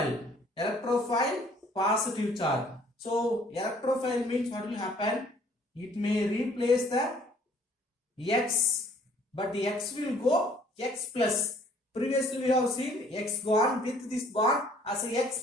Electrophile positive charge. So electrophile means what will happen? It may replace the X, but the X will go X plus. Previously we have seen X gone with this bond as a X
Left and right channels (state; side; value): normal; both; correlation 0.58